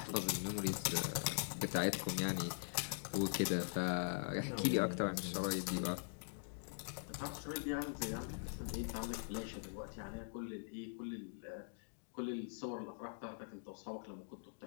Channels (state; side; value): silent; right; digital silence